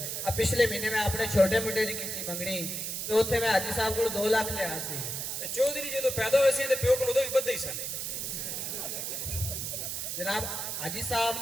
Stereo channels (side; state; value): right; noise; hiss, 3 dB below the sound